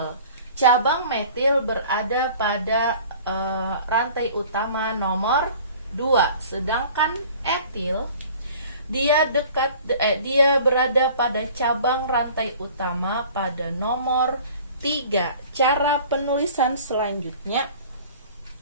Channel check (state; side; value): inverted; both; correlation -0.47